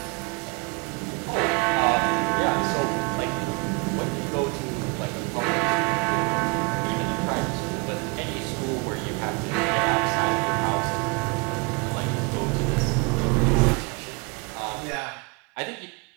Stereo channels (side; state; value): left; quieter; 29.2 dB